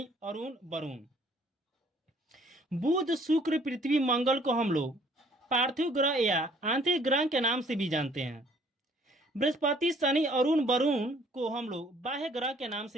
अरुण, वरुण। बुध, शुक्र, पृथ्वी, मंगल को हम लोग पार्थिव ग्रह या आंतरिक ग्रह के नाम से भी जानते हैं। बृहस्पति, शनि, अरुण, वरुण को हम लोग बाह्य ग्रह के नाम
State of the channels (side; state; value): both; normal; correlation 0.59